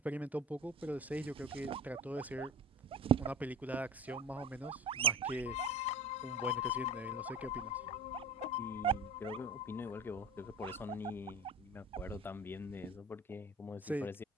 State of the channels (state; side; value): normal; both; correlation 0.37